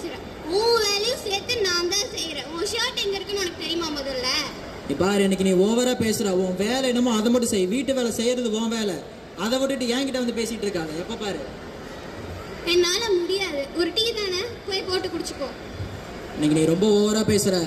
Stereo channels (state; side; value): identical; both; correlation 1.00